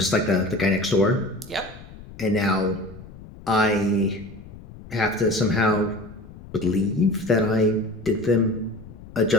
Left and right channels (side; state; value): left; noise; rumble, 18 dB below the sound